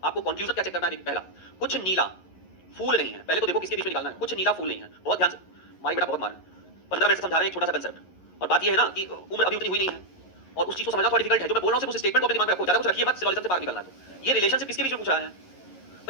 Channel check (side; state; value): right; late; 11 ms